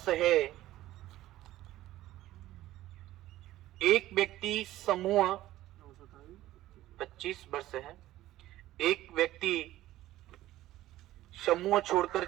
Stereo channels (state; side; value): quieter; left; 15.1 dB